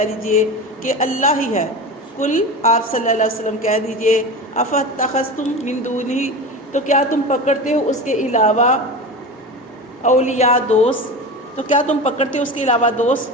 دیجئے کہ اللہ ہی ہے قل آپ صلی اللہ علیہ وسلم کہہ دیجئے افاتخذتم من دونہ تو کیا تم پکڑتے ہو اس کے علاوہ اولیاء دوست تو کیا تم پکڑتے ہو اس کے علاوہ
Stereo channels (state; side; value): normal; both; correlation 0.28